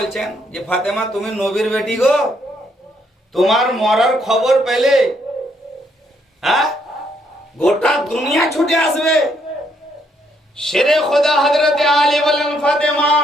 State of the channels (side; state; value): both; normal; correlation 0.72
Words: যে ফাতেমা, তুমি নবীর বেটি গো, তোমার মরার খবর পেলে গোটা দুনিয়া ছুটে আসবে। শেরে খোদা হযরতে আলী বলেন, ফাতেমা